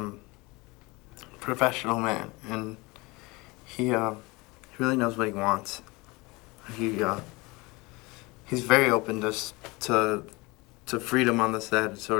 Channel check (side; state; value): right; quieter; 24.5 dB